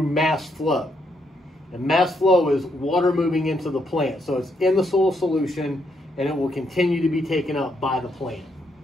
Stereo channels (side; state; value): both; normal; correlation 0.76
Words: mass flow. And mass flow is water moving into the plant. So it's in the soil solution, and it will continue to be taken up by the plant.